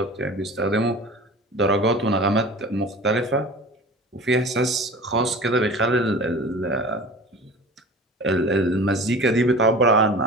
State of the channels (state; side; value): normal; both; correlation 0.39